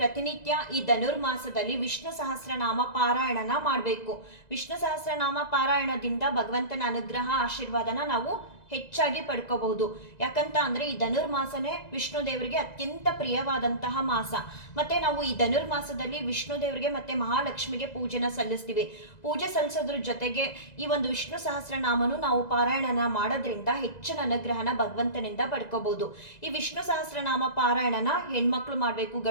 ಈ ಧನುರ್ಮಾಸದಲ್ಲಿ ವಿಷ್ಣು ಸಹಸ್ರನಾಮ ಪಾರಾಯಣನ ಮಾಡಬೇಕು. ವಿಷ್ಣು ಸಹಸ್ರನಾಮ ಪಾರಾಯಣದಿಂದ ಭಗವಂತನ ಅನುಗ್ರಹ ಆಶೀರ್ವಾದನ ನಾವು ಹೆಚ್ಚಾಗಿ ಪಡ್ಕೋಬಹುದು. ಯಾಕಂತ ಅಂದ್ರೆ ಈ ಧನುರ್ಮಾಸನೇ ವಿಷ್ಣು ದೇವರಿಗೆ ಅತ್ಯಂತ ಪ್ರಿಯವಾದಂತಹ ಮಾಸ. ಮತ್ತೆ ನಾವು ಈ ಧನುರ್ಮಾಸದಲ್ಲಿ ವಿಷ್ಣು ದೇವರಿಗೆ ಮತ್ತೆ ಮಹಾಲಕ್ಷ್ಮಿಗೆ ಪೂಜೆನ ಸಲ್ಲಿಸ್ತೀವಿ. ಪೂಜೆ ಸಲ್ಲಿಸೋದ್ರ ಜೊತೆಗೆ ಈ ಒಂದು ವಿಷ್ಣು ಸಹಸ್ರನಾಮನು ನಾವು ಪಾರಾಯಣನ ಮಾಡೋದ್ರಿಂದ ಹೆಚ್ಚಿನ ಅನುಗ್ರಹನ ಭಗವಂತನಿಂದ ಪಡ್ಕೋಬಹುದು. ಈ ವಿಷ್ಣು ಸಹಸ್ರನಾಮ ಪಾರಾಯಣನ ಹೆಣ್ಮಕ್ಳು ಮಾಡಬೇಕು,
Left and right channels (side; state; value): right; late; 2.0 ms